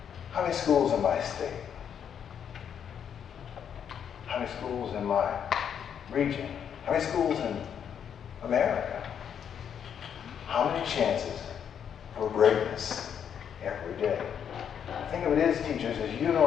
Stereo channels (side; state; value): right; quieter; 8.3 dB